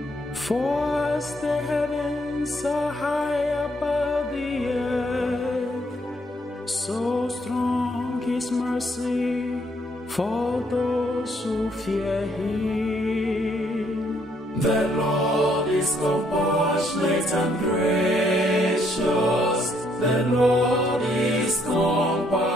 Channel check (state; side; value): normal; both; correlation 0.69